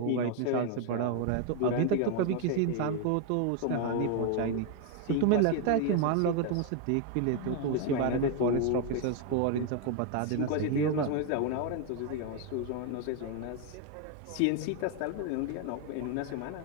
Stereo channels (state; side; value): different; both; correlation 0.00